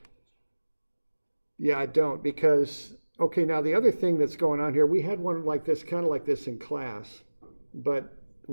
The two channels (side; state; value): both; inverted; correlation -1.00